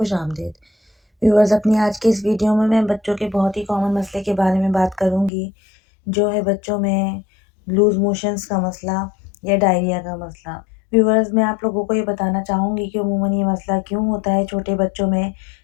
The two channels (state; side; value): drops out; right; at 5.3 s